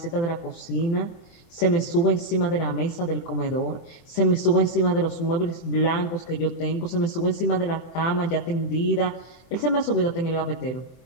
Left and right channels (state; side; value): late; right; 24 ms